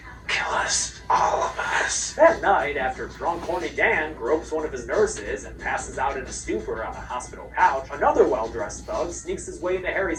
kill us, all of us. That night, after drunk horny Dan gropes one of his nurses and passes out in a stupor on a hospital couch, another well-dressed thug sneaks his way into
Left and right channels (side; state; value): both; identical; correlation 1.00